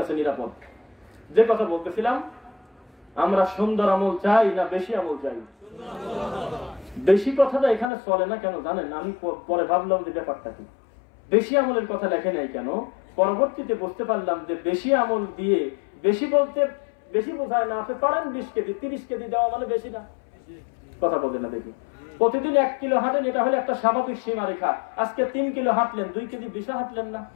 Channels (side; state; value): right; drops out; at 7.9 s